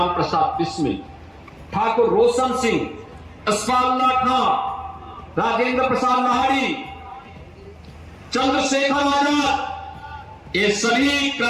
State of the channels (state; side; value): identical; both; correlation 1.00